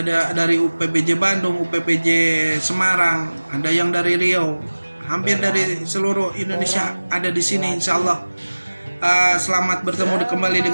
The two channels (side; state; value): both; inverted; correlation -1.00